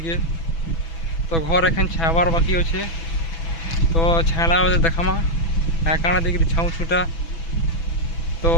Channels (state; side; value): late; right; 6.1 ms